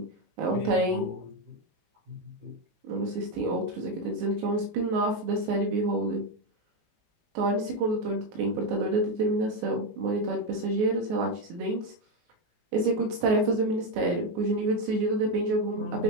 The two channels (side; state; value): left; late; 19 ms